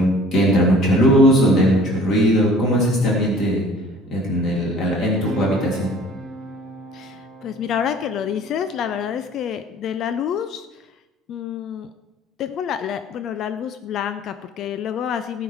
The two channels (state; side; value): normal; both; correlation 0.50